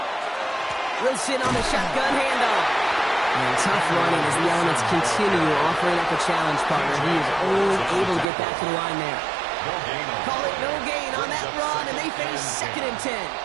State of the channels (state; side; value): drops out; left; at 8.2 s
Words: Wilson on the shotgun handoff. And tough running as the elements continue offering up a challenge, partner. He is only able to get back to the line there. Call it no gain on that run, and they face 2nd and 10.